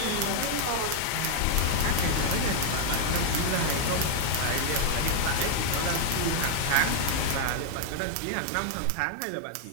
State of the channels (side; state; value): both; different; correlation -0.01